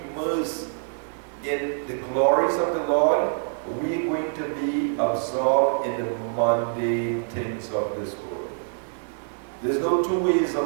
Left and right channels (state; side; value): silent; left; 59 dB below the other